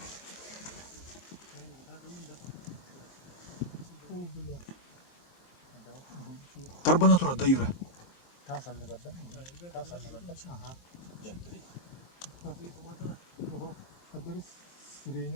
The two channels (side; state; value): right; late; 23 ms